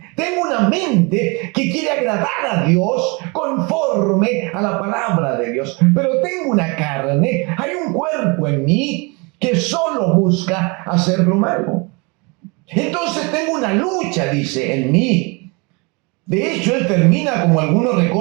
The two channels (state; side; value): quieter; left; 29.4 dB